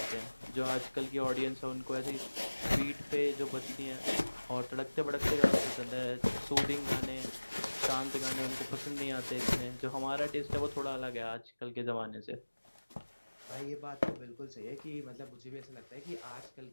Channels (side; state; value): both; inverted; correlation -1.00